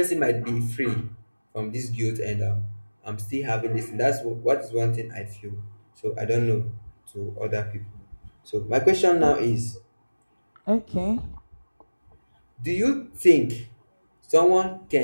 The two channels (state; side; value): inverted; both; correlation -1.00